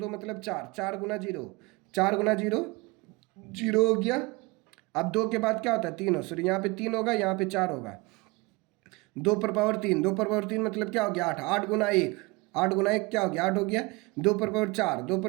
मतलब 4, 4 गुना 0, 4 गुना 0 0 हो गया। अब 2 के बाद क्या होता है 3 हो, सॉरी यहाँ पे 3 होगा यहाँ पे 4 होगा। 2 पर पावर 3, 2 पर पावर 3 मतलब क्या हो गया 8, 8 गुना 1, 8 गुना 1 क्या हो गया 8 हो गया। 2 पर पावर 4, 2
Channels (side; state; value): left; quieter; 24.9 dB